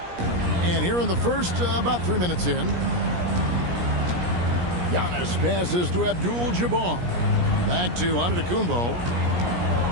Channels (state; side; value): late; left; 17 ms